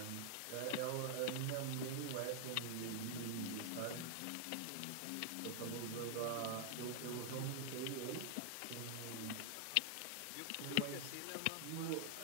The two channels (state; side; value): different; both; correlation 0.00